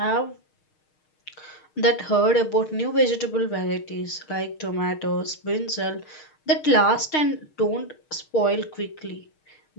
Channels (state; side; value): late; right; 6.5 ms